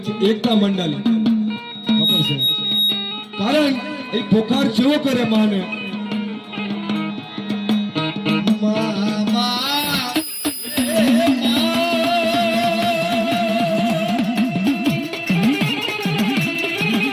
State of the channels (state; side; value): identical; both; correlation 1.00